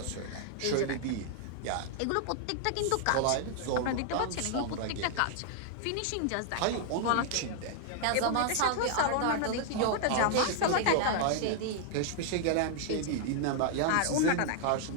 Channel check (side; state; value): both; different; correlation -0.01